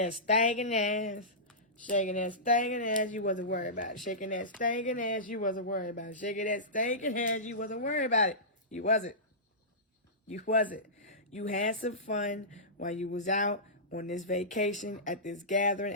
stinking ass. Shaking that stinking ass. You wasn't worried about it. Shaking that stinking ass. You wasn't worried about it. Shaking that stinking ass. You wasn't worried about it. You wasn't. You wasn't. You had some fun while you was out on this vacation, at this gathering,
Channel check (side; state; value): both; normal; correlation -0.19